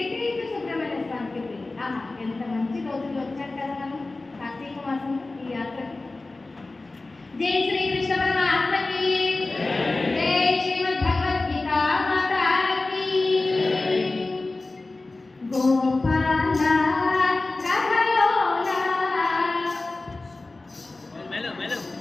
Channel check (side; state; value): right; quieter; 3.2 dB